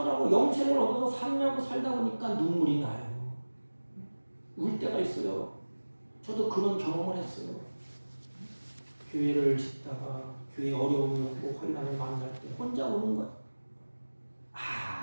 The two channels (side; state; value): both; inverted; correlation -1.00